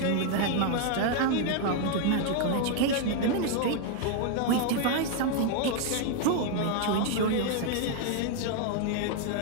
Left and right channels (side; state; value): both; different; correlation 0.00